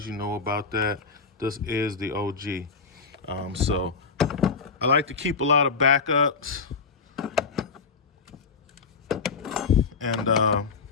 you know about that. This is the OG. So I like to keep a lot of backups, and I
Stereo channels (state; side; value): quieter; right; 4.9 dB